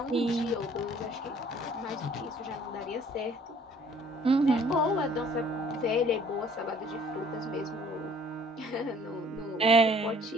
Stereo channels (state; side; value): normal; both; correlation 0.56